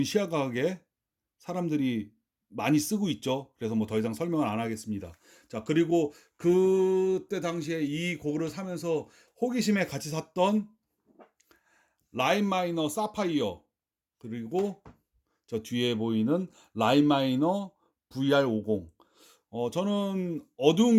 시야각에 사람들이 많이 쓰고 있죠. 그래서 뭐 더 이상 설명을 안 하겠습니다. 자, 그리고 그때 당시에 이 고글을 사면서 호기심에 같이 샀던 라인 마이너 사파이어, 그리고 저 뒤에 보이는 라인 마이너 VR50. 저는 어두운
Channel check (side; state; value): both; identical; correlation 1.00